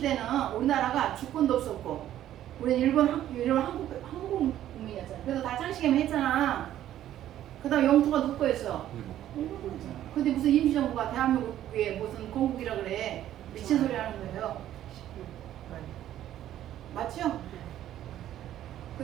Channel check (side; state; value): left; quieter; 12.2 dB